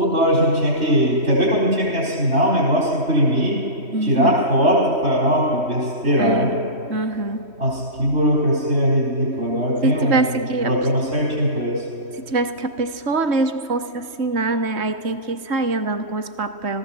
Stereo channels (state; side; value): late; left; 3.1 ms